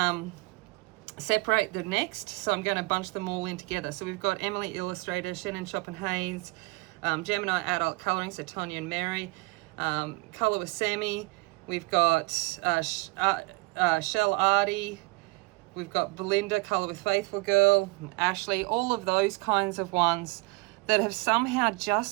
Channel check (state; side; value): quieter; left; 25.7 dB